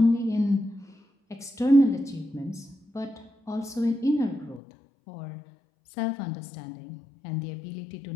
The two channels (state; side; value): drops out; right; at 4.6 s